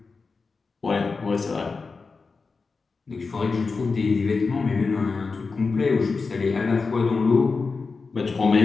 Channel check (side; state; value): right; quieter; 4.4 dB